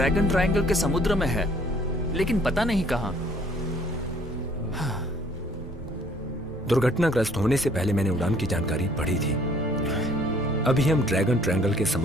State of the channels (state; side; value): normal; both; correlation 0.59